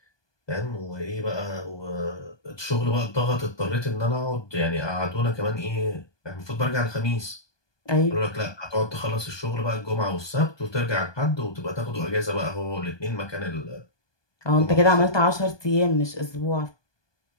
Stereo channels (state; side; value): late; right; 1.2 ms